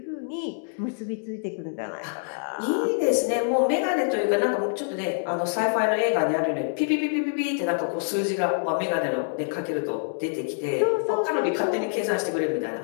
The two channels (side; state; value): right; silent; digital silence